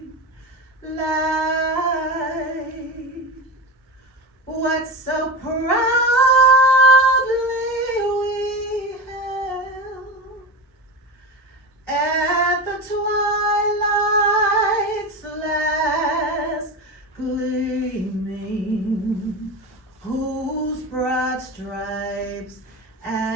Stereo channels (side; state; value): both; normal; correlation 0.24